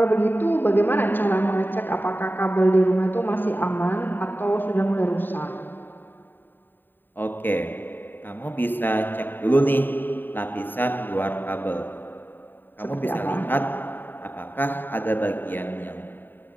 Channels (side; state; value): right; late; 0.093 ms